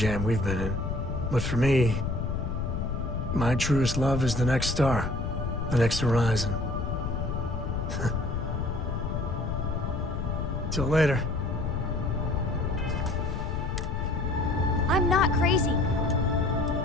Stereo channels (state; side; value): noise; left; rumble, 2 dB below the sound